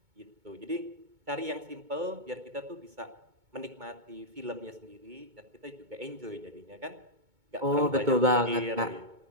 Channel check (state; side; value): late; left; 2.2 ms